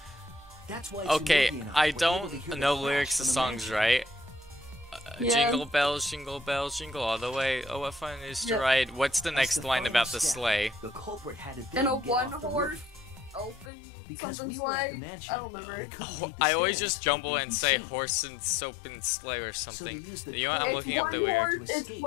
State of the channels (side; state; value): right; drops out; at 13.7 s